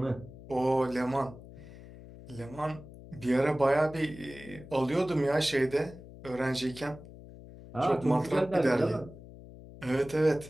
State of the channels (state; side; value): noise; left; hum, 17 dB below the sound